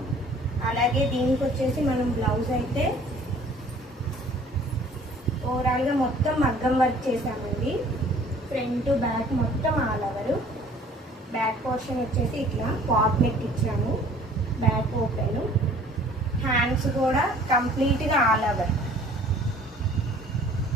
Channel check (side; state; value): both; normal; correlation 0.53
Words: అలాగే దీనికి వచ్చేసి మనం బ్లౌజ్ అయితే ఓవరాల్గా మొత్తం మగ్గం వర్క్ చేసామండి. ఫ్రంట్ బ్యాక్ మొత్తం ఆల్ ఓవర్. బ్యాక్ పోర్షన్ వచ్చేసి ఇట్లా పాప్ నెక్ ఇచ్చాము, బ్యాక్ ఓపెన్. హ్యాండ్స్ కూడా కంప్లీట్గా ఆల్ ఓవర్.